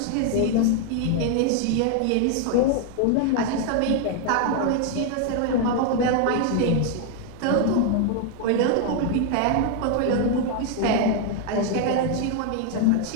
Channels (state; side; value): different; both; correlation 0.00